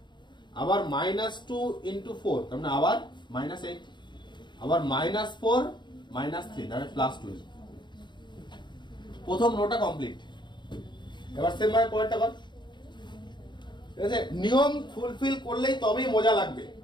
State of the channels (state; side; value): late; right; 0.22 ms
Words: আবার -2 into 4 তার মানে আবার -8, আবার -4 -3 তাহলে +12। প্রথম রোটা কমপ্লিট। এবার সেম ভাবে পরেরটা কর। ঠিক আছে, নিয়ম ফুলফিল করলেই তবেই মজা লাগবে।